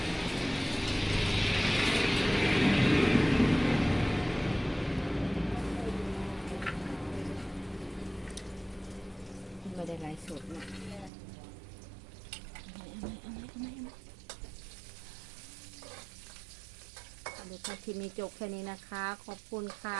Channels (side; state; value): left; drops out; at 11.1 s